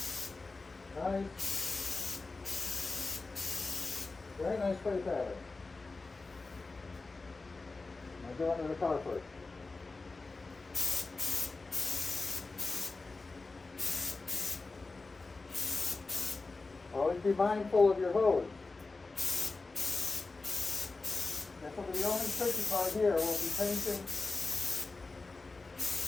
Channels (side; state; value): right; quieter; 3.7 dB